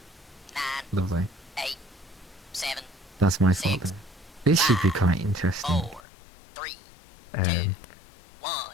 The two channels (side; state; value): right; drops out; at 6.0 s